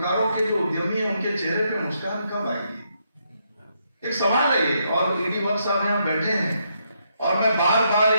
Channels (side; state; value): both; inverted; correlation -0.77